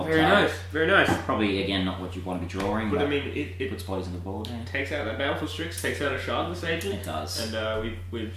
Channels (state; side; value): identical; both; correlation 1.00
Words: Very nice. Probably again not what you want to be drawing. But I mean, it puts bodies on the board. Yeah. Takes out that Baleful Strix, takes out a Shardless Agent. It does. And we've